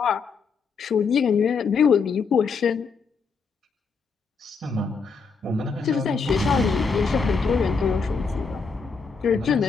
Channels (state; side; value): quieter; right; 5.2 dB